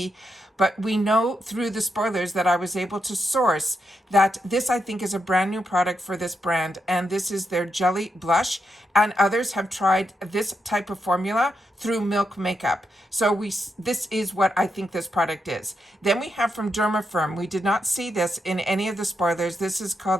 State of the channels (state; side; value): normal; both; correlation 0.83